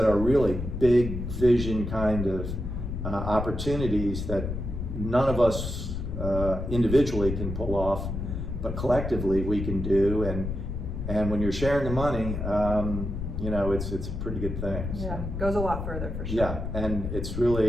are really big vision kind of opportunities that none of us individually can pull off, but collectively we can do. And when you're sharing the money, it's a pretty good thing. Yeah, goes a lot further for sure. Yeah, and it's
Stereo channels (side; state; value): left; noise; rumble, 4 dB below the sound